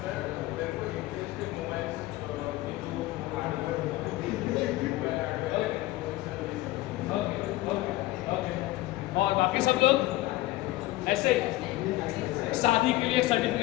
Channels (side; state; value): right; quieter; 17.8 dB